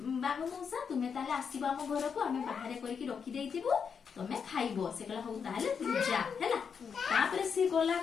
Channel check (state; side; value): quieter; right; 6.5 dB